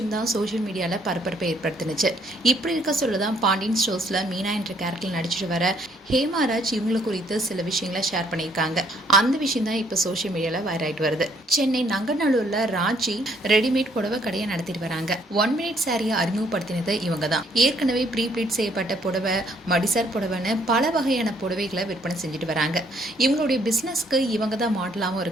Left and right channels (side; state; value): both; normal; correlation 0.66